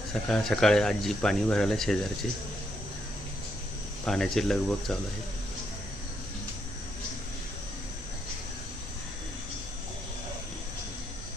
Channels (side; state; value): left; noise; rumble, 13 dB below the sound